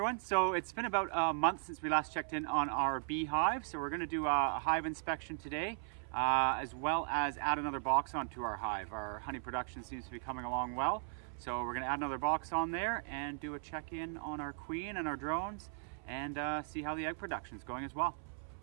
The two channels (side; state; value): left; silent; 53 dB below the other